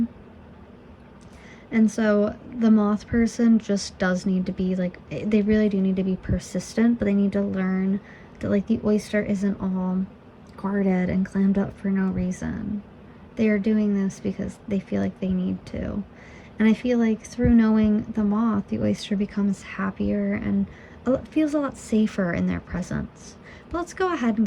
And so the moth person just does need to be like, they really do need to be persistent, but they need to learn that like the oyster isn't all guarded and clammed up for no reason. They are doing this because they feel like they need to. And I feel like through knowing the moth, the oyster becomes happier and feels a lot safer in their presence. But let's go ahead and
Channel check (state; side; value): identical; both; correlation 1.00